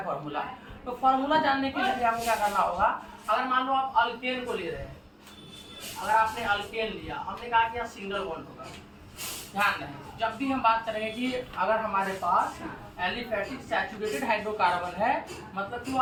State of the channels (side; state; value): both; identical; correlation 1.00